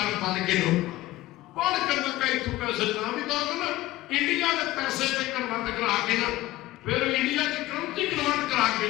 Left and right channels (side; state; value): right; quieter; 17.0 dB